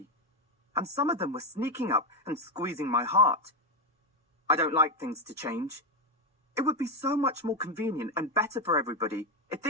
and some of them were sneaking up and squeezing my heart. I don't like things to change. It would be so much more convenient and better for everybody if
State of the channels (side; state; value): both; normal; correlation 0.08